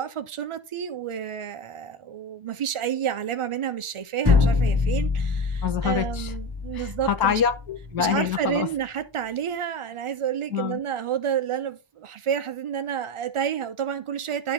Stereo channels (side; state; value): left; late; 1.4 ms